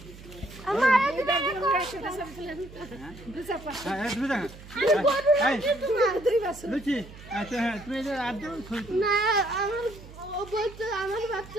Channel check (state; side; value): noise; right; hum, 17 dB below the sound